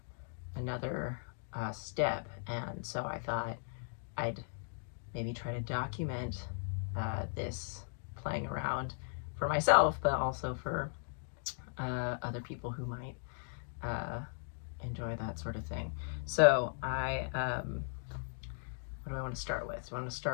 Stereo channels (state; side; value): silent; right; digital silence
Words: another step. And so I thought I'd maybe try to document this playing around for myself, but also for other people who might enjoy that sort of thing. So what do I want to start with? Do I want to